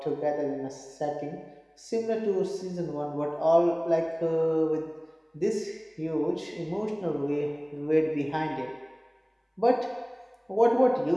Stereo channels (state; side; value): identical; both; correlation 1.00